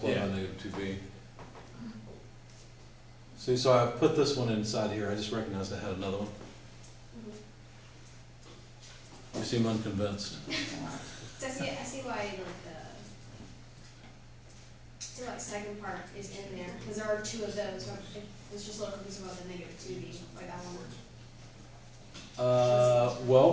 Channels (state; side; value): identical; both; correlation 1.00